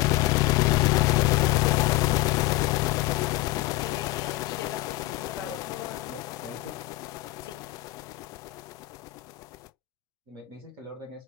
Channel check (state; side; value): quieter; right; 17.4 dB